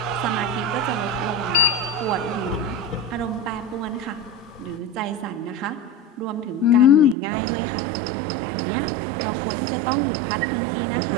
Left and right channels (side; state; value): left; drops out; at 7.2 s